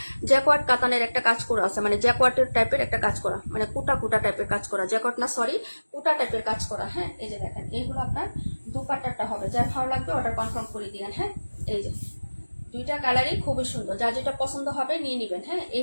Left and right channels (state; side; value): inverted; both; correlation -1.00